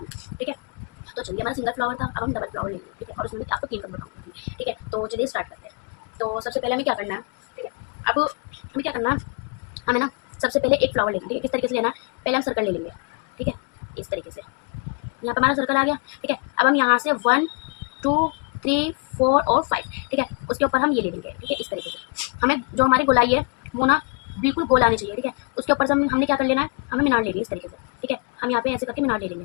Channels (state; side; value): quieter; right; 35.8 dB